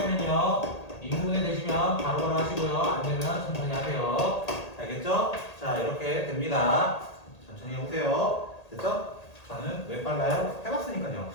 인분해 되시면 바로바로 하시고요. 안 되면 천천히 하세요. 알겠죠? 자 이렇게 됩니다. 천천히 해보세요. 됐죠? 저는 왜 빨라요? 해봤으니까요.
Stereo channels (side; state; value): right; late; 1.8 ms